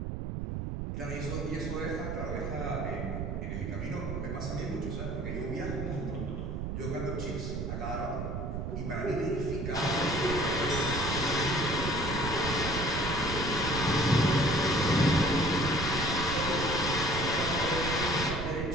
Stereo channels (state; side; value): noise; right; rumble, 4 dB below the sound